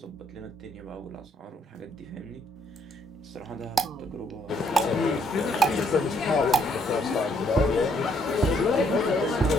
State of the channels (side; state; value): both; normal; correlation 0.69